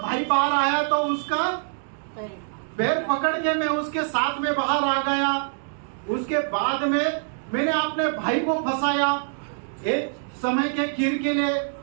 भाई बाहर आया तो उसका पैर पकड़ के मैं उसके साथ में बाहर आ गया। उसके बाद में मैंने अपने भाई को फंसाया एक समय के खीर के लिए,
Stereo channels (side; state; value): left; silent; 62 dB below the other